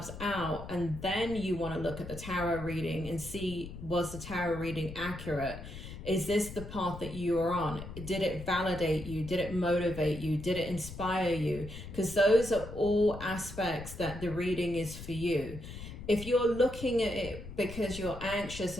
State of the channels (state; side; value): noise; left; rumble, 11 dB below the sound